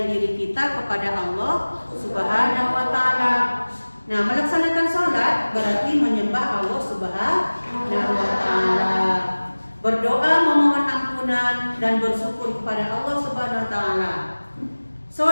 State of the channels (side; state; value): both; inverted; correlation -1.00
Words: diri kita kepada Allah Subhanahu wa Ta'ala. Nah, melaksanakan sholat berarti menyembah Allah Subhanahu wa Ta'ala, berdoa memohon ampunan dan bersyukur kepada Allah Subhanahu wa Ta'ala.